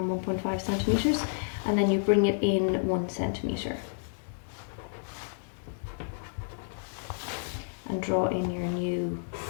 1.5 centimeters and then you bring it in 1 centimeter. And draw in your new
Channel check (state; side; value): silent; right; digital silence